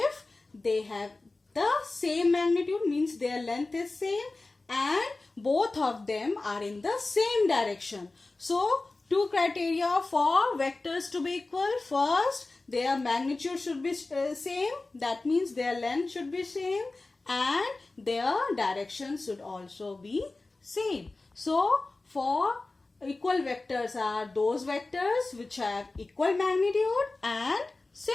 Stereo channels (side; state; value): right; quieter; 3.3 dB